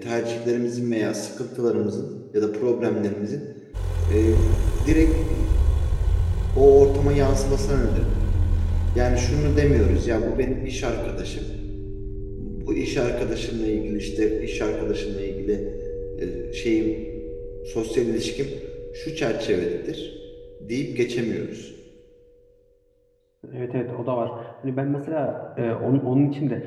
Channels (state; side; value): identical; both; correlation 1.00